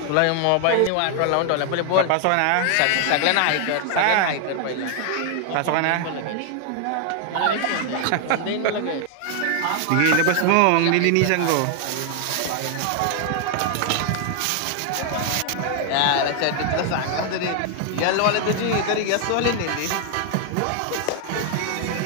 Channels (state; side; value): different; both; correlation 0.00